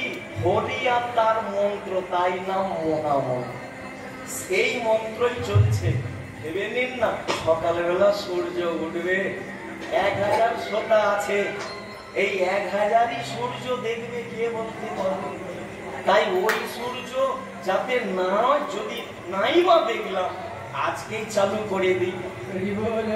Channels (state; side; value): identical; both; correlation 1.00